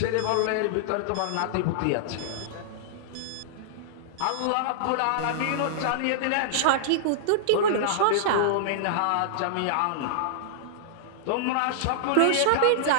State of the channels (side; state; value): both; different; correlation -0.01